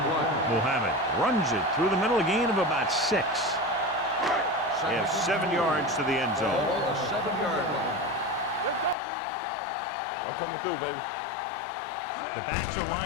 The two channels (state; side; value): drops out; right; at 9.0 s